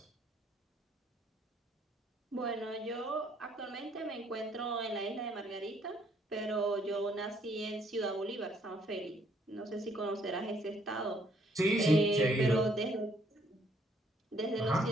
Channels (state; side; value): normal; both; correlation 0.67